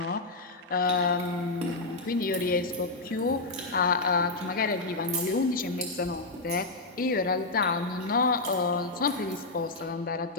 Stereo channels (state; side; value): quieter; right; 3.2 dB